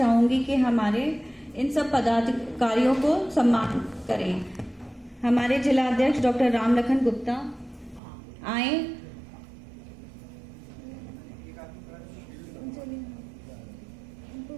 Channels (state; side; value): drops out; left; at 8.0 s